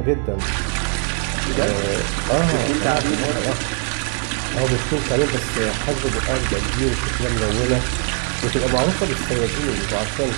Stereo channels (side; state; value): left; quieter; 39.0 dB